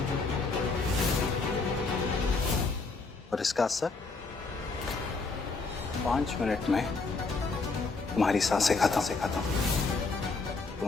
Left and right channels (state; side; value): quieter; right; 4.0 dB